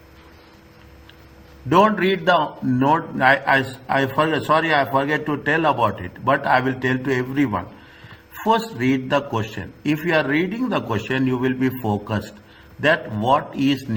Don't read the note. I forget. Sorry, I forget to tell about it. But I will tell to everyone. First, read the question. If you are reading the question, you will be focused that what is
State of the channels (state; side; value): identical; both; correlation 1.00